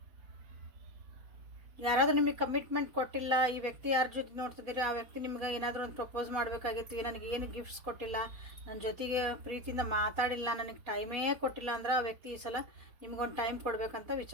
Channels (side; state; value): left; late; 4.7 ms